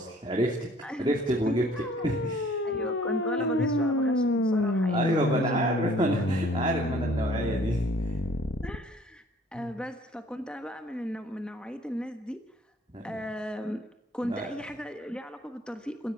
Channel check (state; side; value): normal; both; correlation 0.55